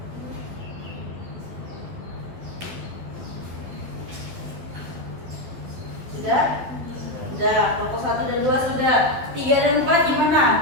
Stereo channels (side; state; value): left; late; 12 ms